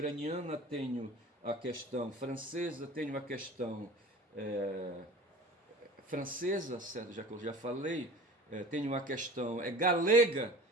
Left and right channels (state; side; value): normal; both; correlation 0.40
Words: tenho a questão francesa, tenho a questão francesa, certo? Já que eu já falei, tenho a questão galega.